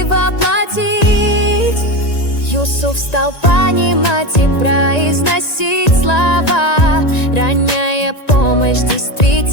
воплотить. Юсуф стал понимать и произносить слова. Ранняя помощь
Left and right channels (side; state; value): right; late; 1.9 ms